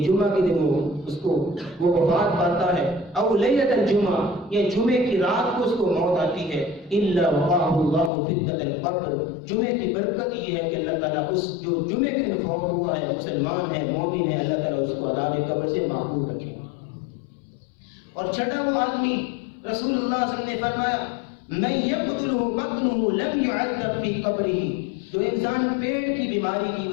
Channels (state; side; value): drops out; right; at 8.1 s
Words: جمعہ کے دن وہ وفات پاتا ہے, او لیلۃ الجمعہ, یا جمعے کی رات کو اس کو موت آتی ہے, الا وقاہ اللہ فتنۃ القبر, جمعے کی برکت یہ ہے کہ اللہ تعالیٰ اس جو جمعے کے دن فوت ہوا ہے, مسلمان ہے, مومن ہے, اللہ تعالیٰ اس کو عذاب قبر سے محفوظ رکھے. اور چھٹا وہ آدمی, رسول اللہ صلی اللہ علیہ وسلم نے فرمایا من یقتلہ بطنہ لم یعذب فی قبرہ, جو انسان پیٹ کی بیماری کی